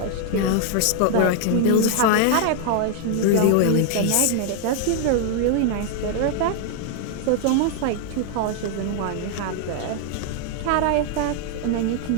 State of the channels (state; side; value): different; both; correlation 0.00